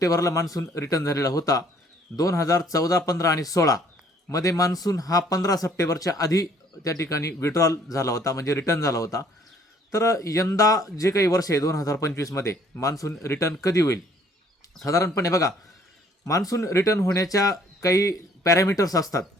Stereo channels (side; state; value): both; normal; correlation 0.60